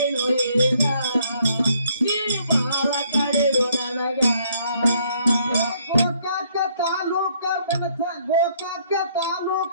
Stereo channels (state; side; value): inverted; both; correlation -0.67